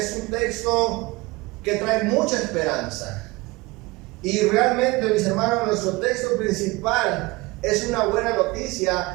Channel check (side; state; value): left; quieter; 22.8 dB